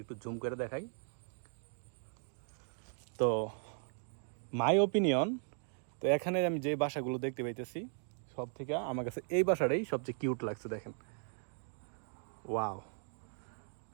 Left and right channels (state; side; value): silent; left; 53 dB below the other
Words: একটু জুম করে দেখাই। তো মাই ওপিনিয়ন, তো এখানে আমি যে বাসাগুলো দেখতে পাইতেছি সব থেকে আমার কাছে এই বাসাটাই সবচেয়ে কিউট লাগছে। দেখেন, ওয়াও,